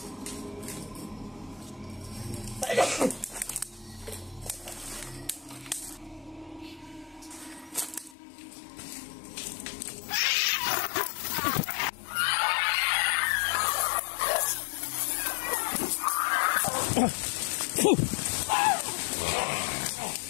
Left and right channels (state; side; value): drops out; right; at 8.2 s